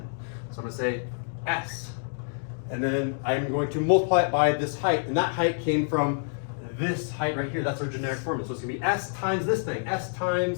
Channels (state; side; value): silent; right; digital silence